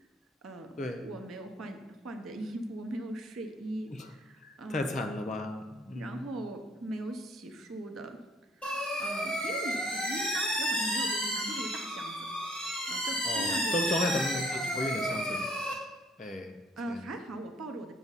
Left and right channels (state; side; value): normal; both; correlation 0.61